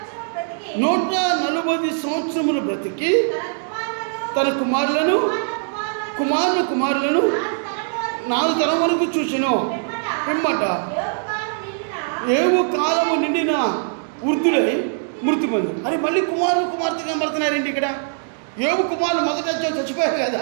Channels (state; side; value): silent; left; 65 dB below the other